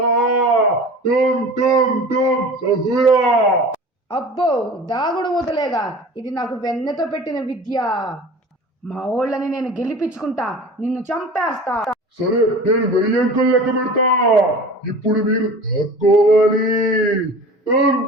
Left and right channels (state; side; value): normal; both; correlation 0.39